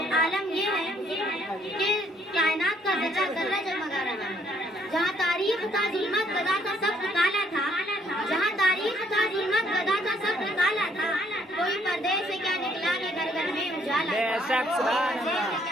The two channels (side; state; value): both; normal; correlation 0.66